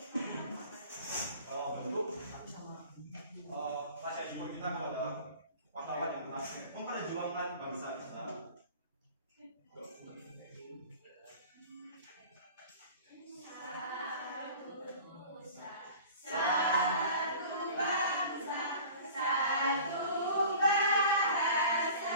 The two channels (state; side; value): inverted; both; correlation -0.42